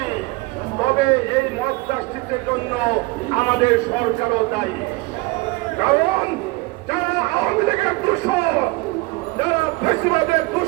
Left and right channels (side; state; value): left; quieter; 23.5 dB